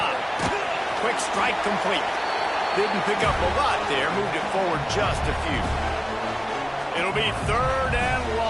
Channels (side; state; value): both; identical; correlation 1.00